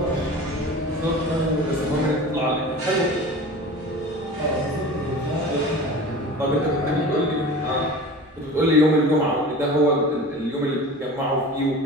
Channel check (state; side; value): normal; both; correlation 0.37